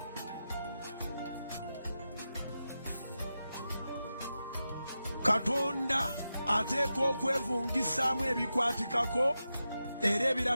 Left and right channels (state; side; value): inverted; both; correlation -0.90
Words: Katonda ateeka okwevungisaamu ebikwatikako era